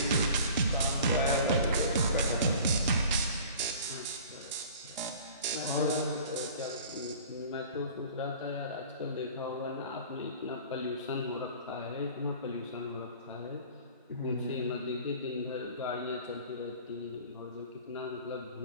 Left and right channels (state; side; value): inverted; both; correlation -0.46